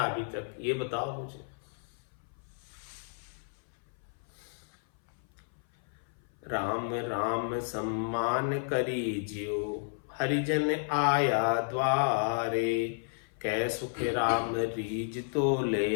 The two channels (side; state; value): right; silent; 56 dB below the other